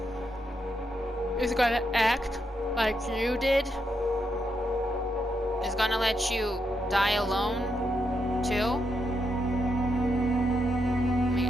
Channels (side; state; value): both; normal; correlation 0.82